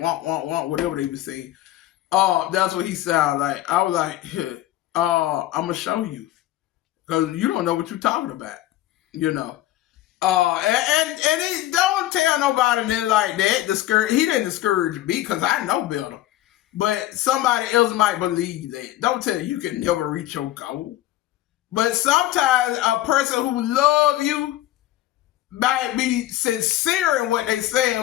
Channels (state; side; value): quieter; right; 14.6 dB